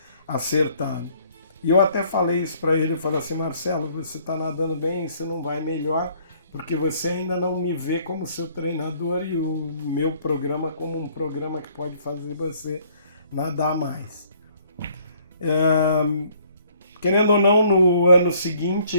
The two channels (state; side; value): inverted; both; correlation -0.62